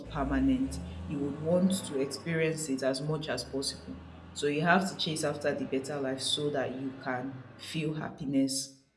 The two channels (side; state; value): both; identical; correlation 1.00